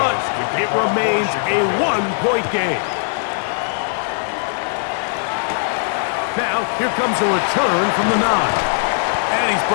it remains a 1-point game. Now, here comes a return from the 9. And he's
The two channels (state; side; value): silent; right; digital silence